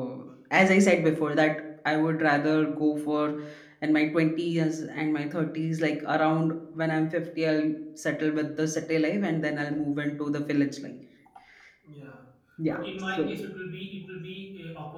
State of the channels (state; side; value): identical; both; correlation 1.00